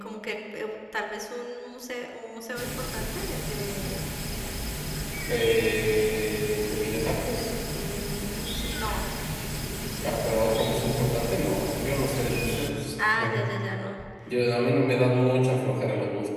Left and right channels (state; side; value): identical; both; correlation 1.00